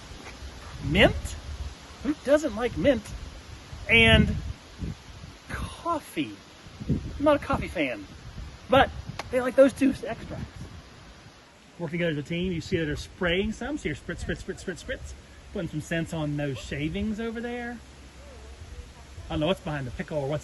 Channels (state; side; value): identical; both; correlation 1.00